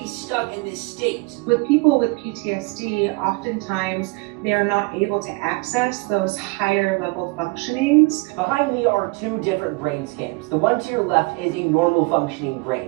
stuck in this state. With people with PTSD, oftentimes they are not able to access those higher level functionings. Behind me are two different brain scans. The one to your left is a normal functioning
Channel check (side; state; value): left; quieter; 27.3 dB